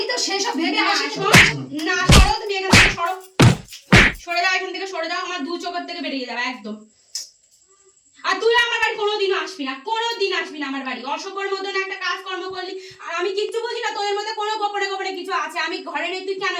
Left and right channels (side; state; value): both; identical; correlation 1.00